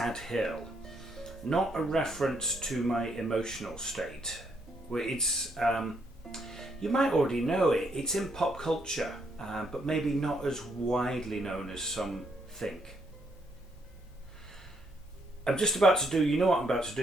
Hill. Not a reference to my emotional state. It's, you might already know it, it's in pop culture, but maybe not as widely known as some think. I'm just about to do, you know what I'm about to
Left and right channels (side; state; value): both; normal; correlation 0.73